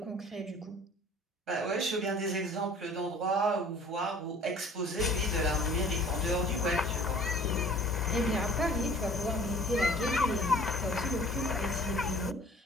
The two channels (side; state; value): both; normal; correlation 0.49